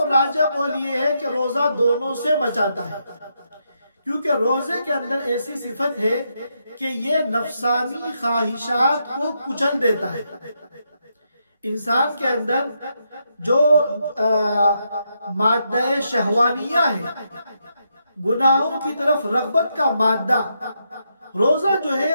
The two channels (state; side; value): inverted; both; correlation -0.81